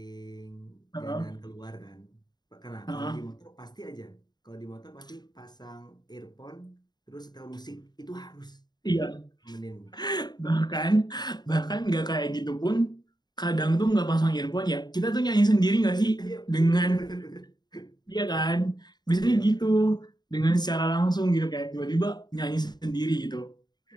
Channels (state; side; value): late; right; 0.20 ms